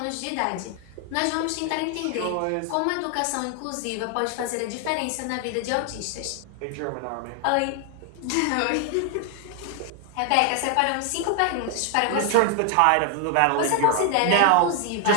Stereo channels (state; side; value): different; both; correlation 0.00